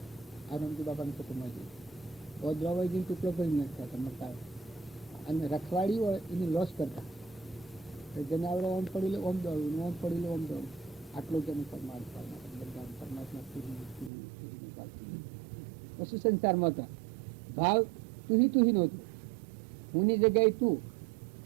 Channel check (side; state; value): left; drops out; at 14.1 s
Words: આ રામજી બાપાની કુટુંબમાં જઈએ ઓદ્રવાઈજીને ટુકડો કરી નાખતા હતા મકાઈ, અને રખવાડી હોય એની લોસ કરતા. જેને આપણે ઓમ પડી લે ઓમ દોડવું, ઓમ પડી લે ઓમ દોડવું. આટલો જ એનું પરમાત્મા બધા પરમાત્મા પછી સંસારમાં હતા. ભાવ તુહી નહોતું. હુંની જગ્યાએ તું,